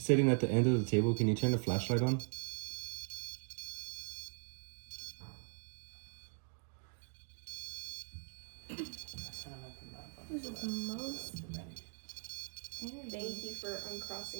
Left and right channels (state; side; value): silent; left; 51 dB below the other